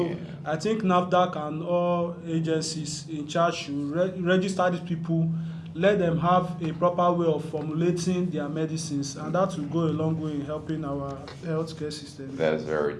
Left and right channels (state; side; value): identical; both; correlation 1.00